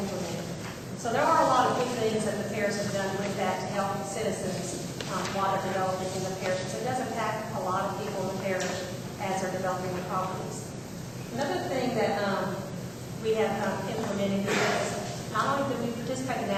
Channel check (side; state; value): both; identical; correlation 1.00